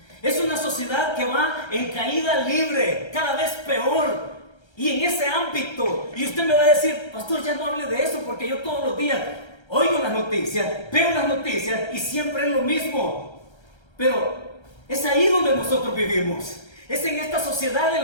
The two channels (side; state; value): right; late; 1.3 ms